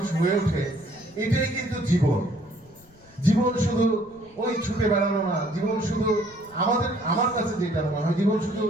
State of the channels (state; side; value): noise; left; rumble, 27 dB below the sound